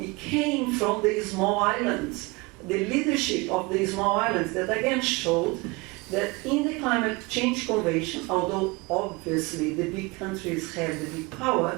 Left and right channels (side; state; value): left; quieter; 25.6 dB